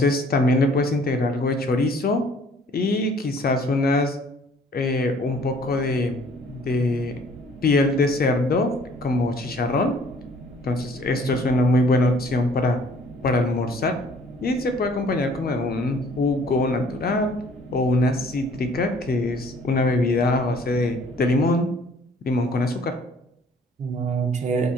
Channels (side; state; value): both; normal; correlation 0.56